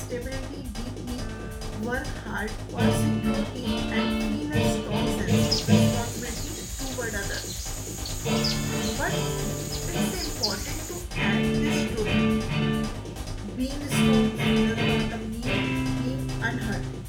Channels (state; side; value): identical; both; correlation 1.00